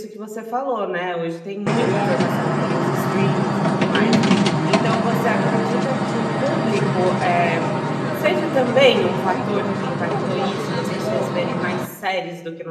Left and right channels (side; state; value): both; identical; correlation 1.00